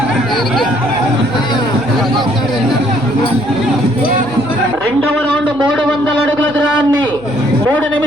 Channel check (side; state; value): left; noise; hum, 23 dB below the sound